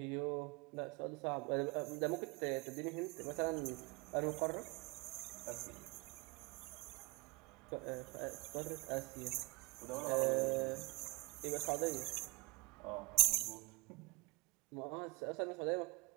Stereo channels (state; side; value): quieter; left; 25.3 dB